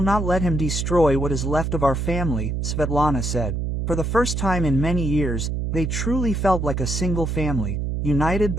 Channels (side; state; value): right; noise; hum, 1 dB below the sound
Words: not let him destroy what is left of our family," Svetlana said. For the first time in many years, they truly felt like a single family, united